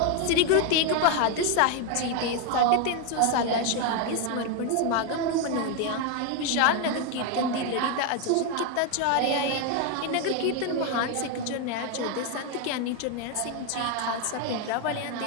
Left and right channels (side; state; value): both; different; correlation 0.01